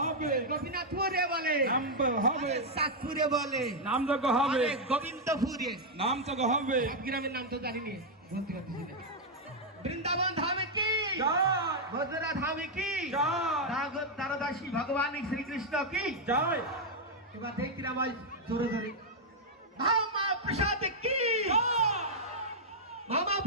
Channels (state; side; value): normal; both; correlation -0.02